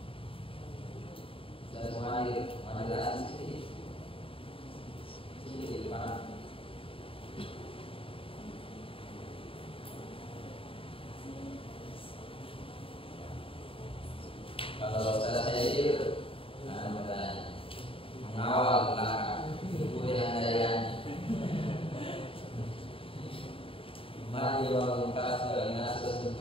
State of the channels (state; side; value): late; right; 0.26 ms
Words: Saya semua hadir. Ada di sini. Sini di depan. Kalau saya itu mengawal belakang, kemudian daya mari orang kasih dengan